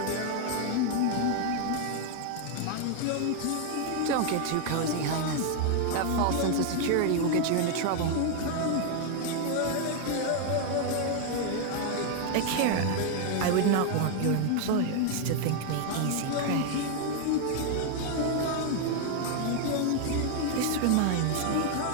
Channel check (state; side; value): different; both; correlation 0.00